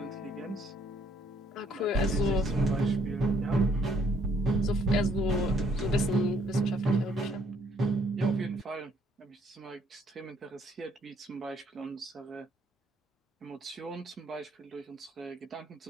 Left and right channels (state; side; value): normal; both; correlation 0.67